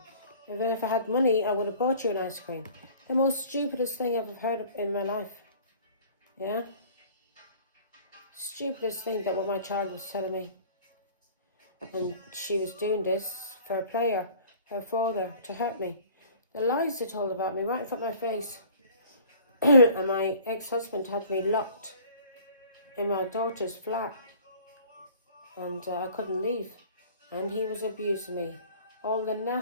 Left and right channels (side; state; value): both; inverted; correlation -0.49